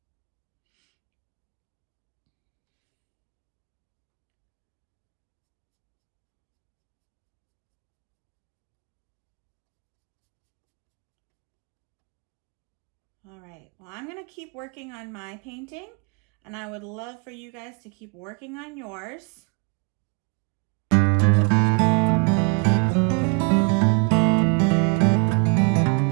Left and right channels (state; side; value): quieter; left; 34.1 dB